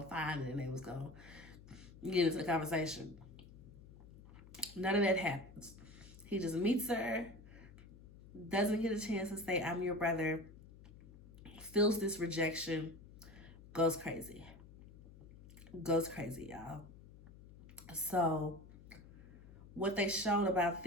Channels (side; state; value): left; noise; hum, 18 dB below the sound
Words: to find it and they was going to get into the conversation. None of that happens. He just meets her, doesn't get a chance to say, I'm your brother, feels this rejection, goes crazy. Goes crazy, y'all. So what they showed about